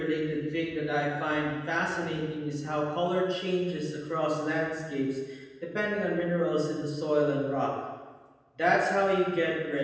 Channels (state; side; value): identical; both; correlation 1.00